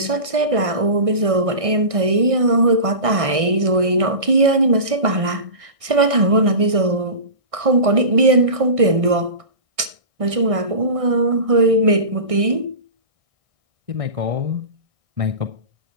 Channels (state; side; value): late; left; 1.6 ms